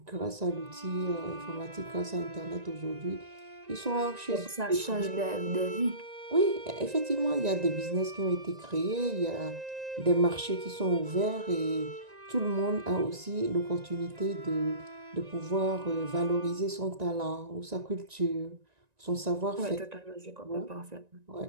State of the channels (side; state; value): left; late; 1.9 ms